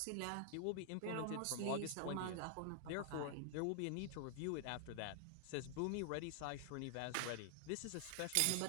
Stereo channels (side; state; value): both; different; correlation 0.00